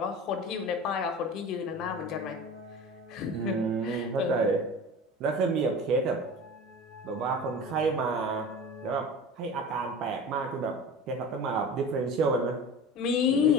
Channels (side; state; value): both; normal; correlation 0.35